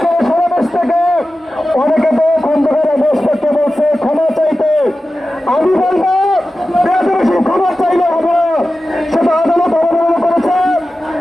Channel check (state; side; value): normal; both; correlation 0.94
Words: সমাবেশ থেকে অনেকে তো খন্দকার আবু আসফাককে বলছে ক্ষমা চাইতে। আমি বলবো বেশি ক্ষমা চাইলে হবে না, সেটা আদালত অবমাননা করেছে